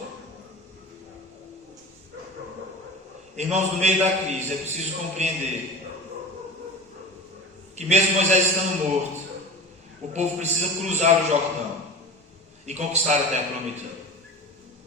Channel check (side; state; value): both; normal; correlation 0.33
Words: Irmãos, no meio da crise é preciso compreender que mesmo Moisés estando morto, o povo precisa cruzar o Jordão e conquistar a terra prometida.